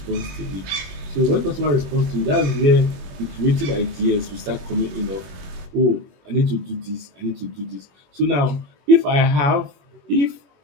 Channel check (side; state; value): left; late; 21 ms